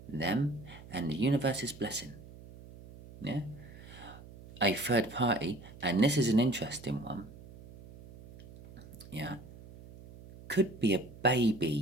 them, and the universe's blessing. Yeah? A third party, and this is an interesting one, yeah, could be a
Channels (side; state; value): right; noise; hum, 18 dB below the sound